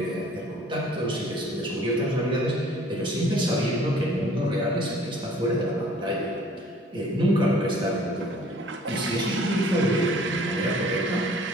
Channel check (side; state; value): both; normal; correlation 0.54